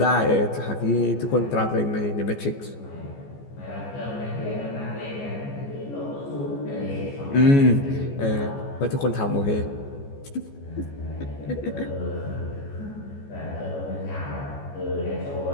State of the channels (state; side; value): late; right; 14 ms